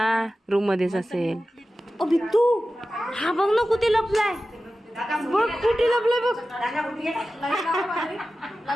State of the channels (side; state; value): both; normal; correlation 0.94